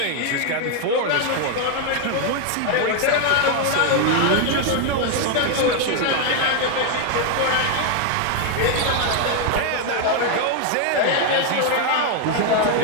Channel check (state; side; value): different; both; correlation 0.01